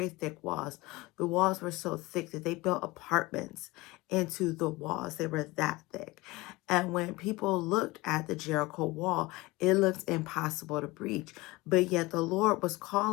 thick walls. The walls were so thick that they built apartments into the walls. They were that thick. And when people looked at the Jericho wall, it looked impossible to breach. But yet the Lord was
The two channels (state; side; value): quieter; right; 21.6 dB